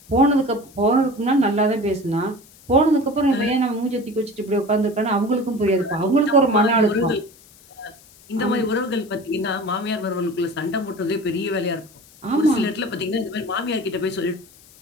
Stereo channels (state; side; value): noise; left; hiss, 25 dB below the sound